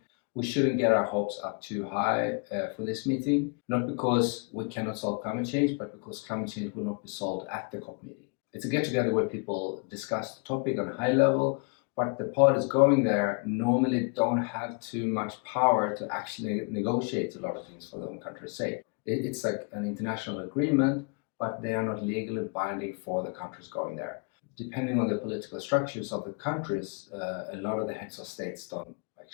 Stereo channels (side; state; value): right; quieter; 36.7 dB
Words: We shouldn't get our hopes up too high for this meeting, not because we cannot solve climate change, but because climate change will not be solved at the COP meeting. It's a get-together where people discuss the topic on a high level, but the parties going there normally don't have too much power to actually negotiate a lot of things for their own country's sake. It's like an international agreement, but they are not legally binding for the countries going there. Depending on the political structures of the countries, a lot of the heads of states don't